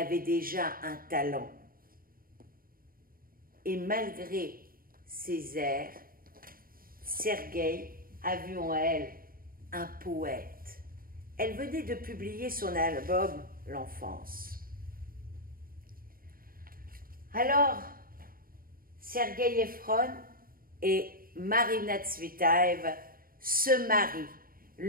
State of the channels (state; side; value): late; left; 0.42 ms